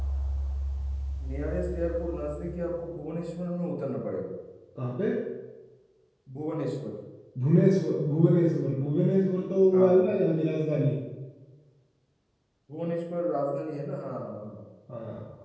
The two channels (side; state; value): both; identical; correlation 1.00